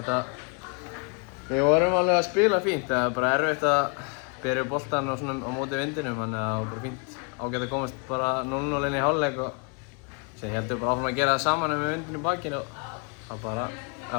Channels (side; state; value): right; quieter; 36.3 dB